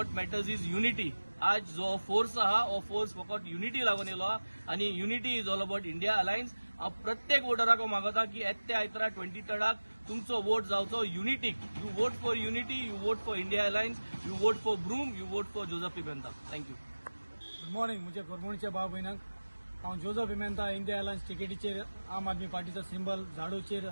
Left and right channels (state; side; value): inverted; both; correlation -1.00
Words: matters is unity. आज जो फोर्स आहा हो फोर्स फकत युनिटी लागून येलो आहा आणि unity is all about India alliance. हांव प्रत्येक वोटराक मागता की येत्या आयतारा 23rd तुमचो वोट जावचो युनिटीक. You vote for unity, you vote for India alliance, you vote for broom, you vote for Joseph Pimenta. Thank you. Good morning. मुझे कोरमणचे भाव भयणांक हांव जोझफ पिमेंता इंडिया अलायन्स टिकेटीचेर आम आदमी पार्टीचो सिंबल झाडूचेर